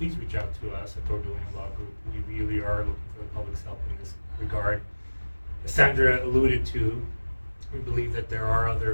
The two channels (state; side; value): inverted; both; correlation -1.00